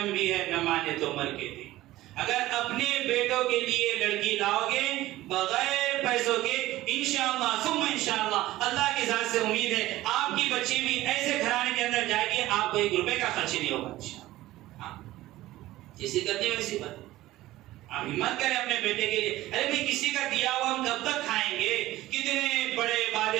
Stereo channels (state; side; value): quieter; left; 16.3 dB